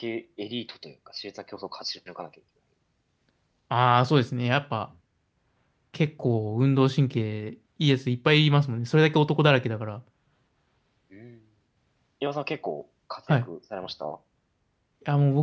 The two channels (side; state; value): both; identical; correlation 1.00